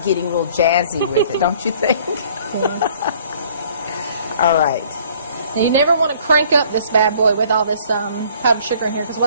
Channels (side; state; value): both; inverted; correlation -0.56